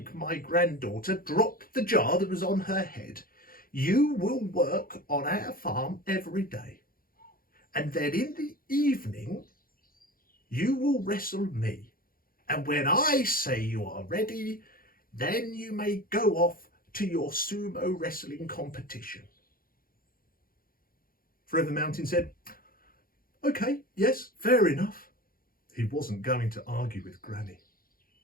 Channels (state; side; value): late; right; 0.42 ms